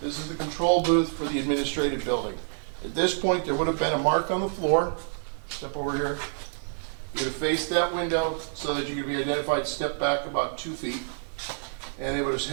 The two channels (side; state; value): left; silent; 60 dB below the other